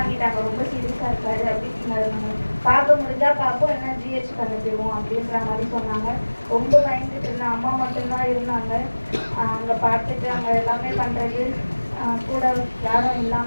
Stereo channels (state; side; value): inverted; both; correlation -1.00